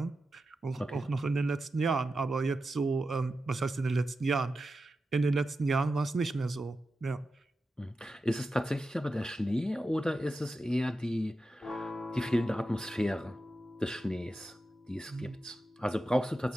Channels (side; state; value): both; normal; correlation 0.91